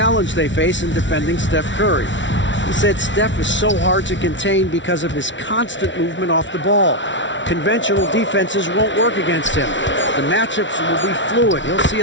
they face in defending Steph Curry. He said Steph is so hard to contain because of his constant movement off the ball. Conventional defenses won't work against him. The matchups will be fluid. He'll see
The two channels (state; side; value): late; right; 0.55 ms